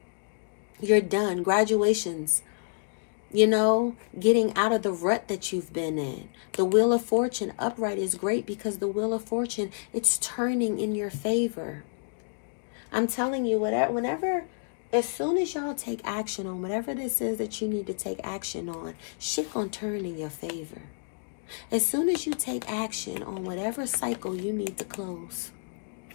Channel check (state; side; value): silent; right; digital silence